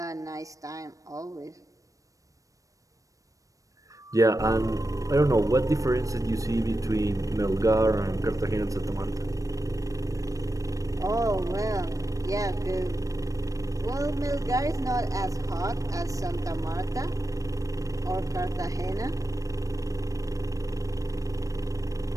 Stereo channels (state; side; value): late; left; 0.16 ms